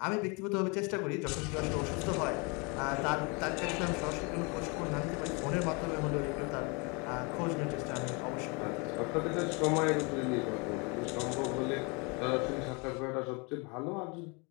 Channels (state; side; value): quieter; right; 31.0 dB